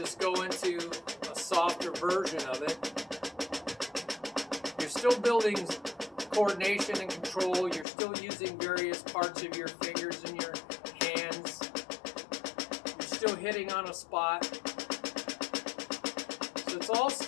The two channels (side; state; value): right; drops out; at 7.9 s